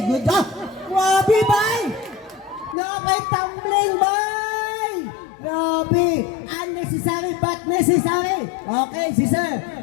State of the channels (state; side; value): drops out; right; at 2.8 s